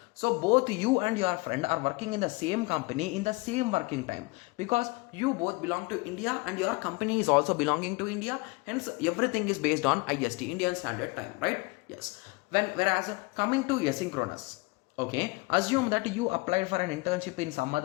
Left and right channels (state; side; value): quieter; right; 26.2 dB